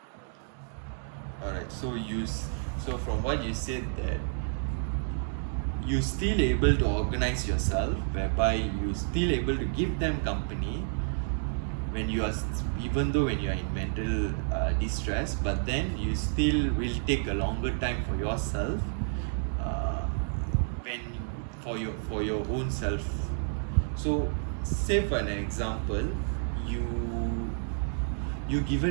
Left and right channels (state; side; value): silent; left; 58 dB below the other